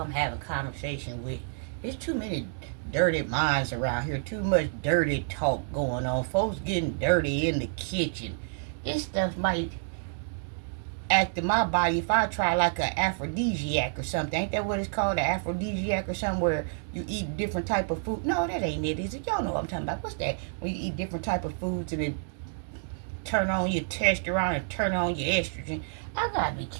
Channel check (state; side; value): silent; left; digital silence